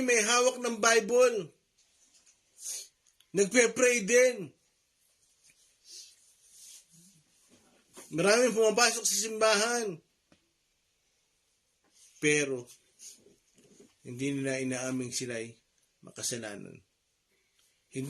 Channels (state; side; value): identical; both; correlation 1.00